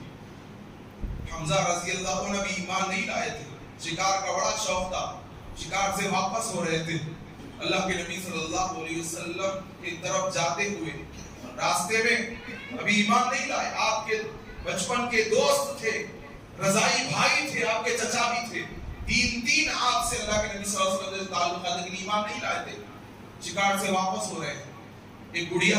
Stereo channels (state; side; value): identical; both; correlation 1.00